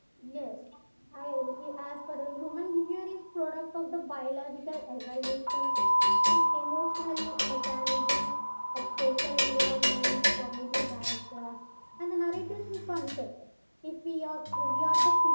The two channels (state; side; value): inverted; both; correlation -1.00